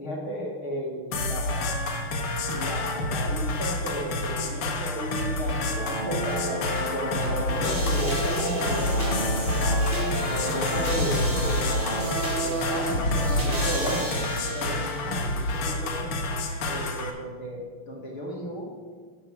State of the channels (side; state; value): right; late; 6.7 ms